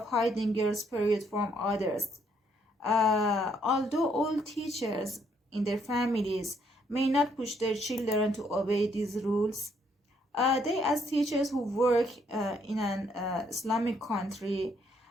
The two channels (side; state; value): both; normal; correlation 0.70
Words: hiding girls' period from others. Although all teachers in their families may not push their children to obey these rules, they, as teachers who work in an Islamic country,